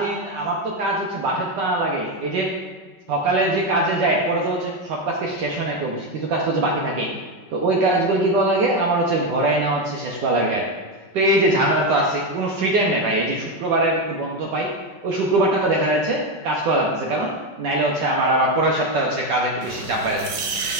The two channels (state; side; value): late; left; 5.3 ms